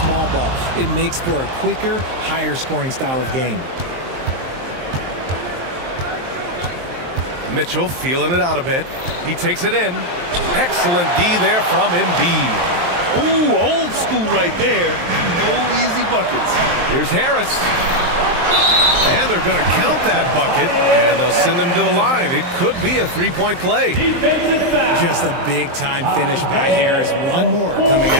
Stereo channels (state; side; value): late; left; 23 ms